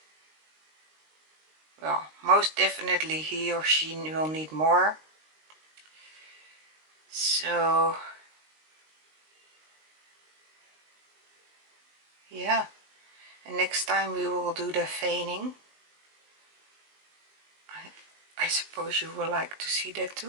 well, most definitely he or she will need more. So yeah, and next time we will do the veining. I suppose you will like to see that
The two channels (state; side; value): late; left; 19 ms